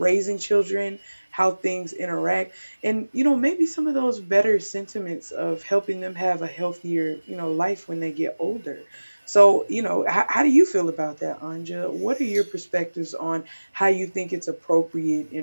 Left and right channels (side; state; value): both; inverted; correlation -1.00